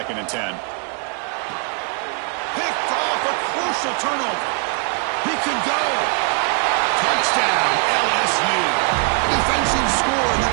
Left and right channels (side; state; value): left; quieter; 39.0 dB